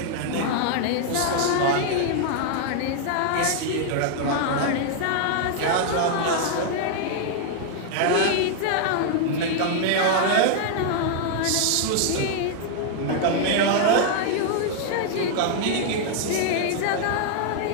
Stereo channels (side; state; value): both; different; correlation 0.00